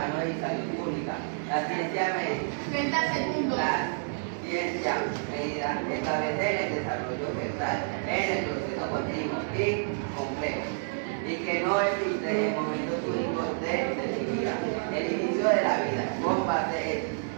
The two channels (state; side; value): silent; left; digital silence